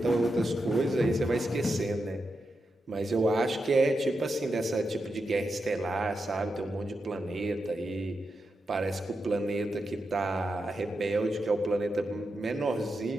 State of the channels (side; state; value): both; normal; correlation 0.87